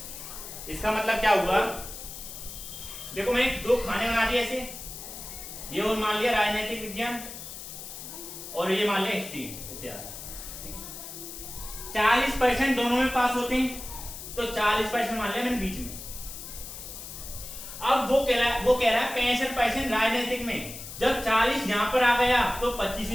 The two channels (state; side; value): noise; left; hiss, 11 dB below the sound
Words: इसका मतलब क्या हुआ? देखो मैंने दो खाने बना दिए ऐसे, ये और मान लिया राजनीतिक विज्ञान और ये मान लिया हिस्ट्री इतिहास। 40% दोनों में पास होते हैं, तो 40% मान लिया मैंने बीच में। अब वो कह रहा है 65% राजनीतिक में। जब 40 यहां पर आ गया तो 25